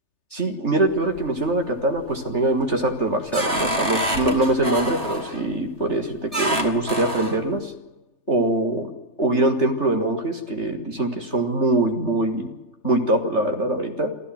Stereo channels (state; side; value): late; right; 3.3 ms